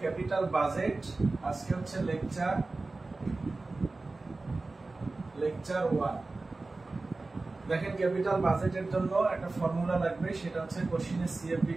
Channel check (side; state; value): left; quieter; 3.4 dB